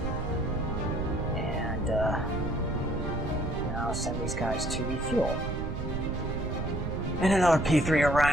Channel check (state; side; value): noise; right; rumble, 3 dB below the sound